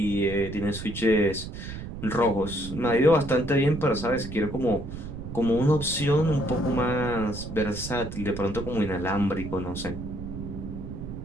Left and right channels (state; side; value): noise; right; rumble, 9 dB below the sound